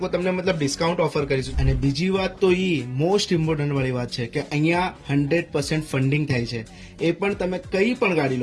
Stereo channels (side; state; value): both; identical; correlation 1.00